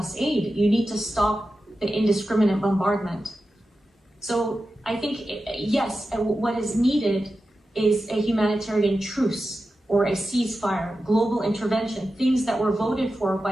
aid. You need to stop the indiscriminate bombardment. So I think, yes, what is needed is a humanitarian truce or a ceasefire, global intervention, things that were voted for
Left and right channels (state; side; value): normal; both; correlation 0.92